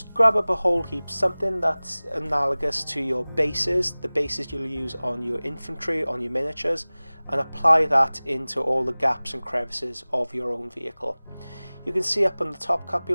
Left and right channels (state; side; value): inverted; both; correlation -0.99